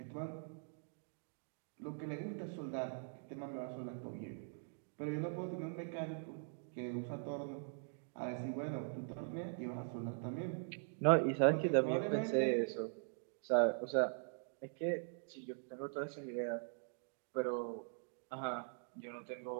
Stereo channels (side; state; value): left; silent; digital silence